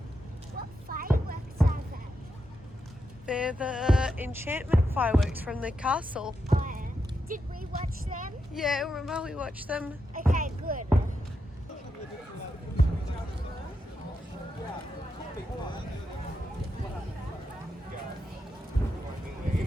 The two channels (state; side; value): normal; both; correlation 0.85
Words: What fireworks are they? They're the enchantment fireworks from the castle. Oh, yeah. Did we watch them? Yeah, remember we watched them? Okay, good.